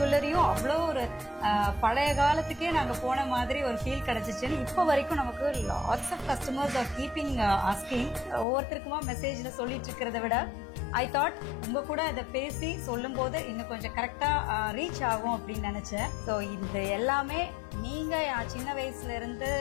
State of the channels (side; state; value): right; drops out; at 8.5 s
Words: அவ்வளோ ஒரு பழைய காலத்துக்கே நாங்க போன மாதிரி ஒரு ஃபீல் கிடைச்சிச்சுன்னு இப்போ வரைக்கும் நமக்கு lots of customers are keeping asking. ஒவ்வொருத்தருக்குமா மெசேஜ்ல சொல்லிட்டு இருக்கிறத விட ஐ தாட் உங்க கூட அதை பேசி சொல்லும் போது இன்னும் கொஞ்சம் கரெக்டா ரீச் ஆகும் அப்படின்னு நினைச்சேன். ஸோ இது எல்லாமே நீங்க சின்ன வயசுல இருந்து